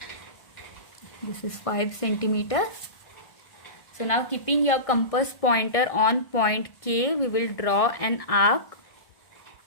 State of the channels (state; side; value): late; right; 1.6 ms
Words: This is 5 centimeter. So now keeping your compass pointer on point K, we will draw an arc.